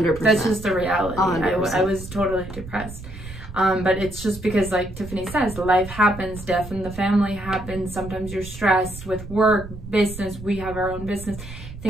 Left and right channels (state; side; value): noise; right; rumble, 13 dB below the sound